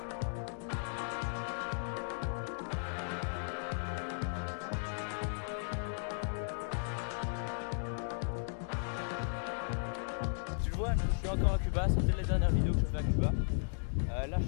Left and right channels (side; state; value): right; silent; digital silence